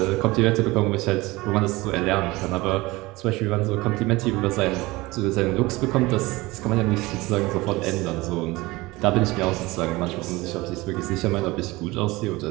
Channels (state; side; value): quieter; left; 21.2 dB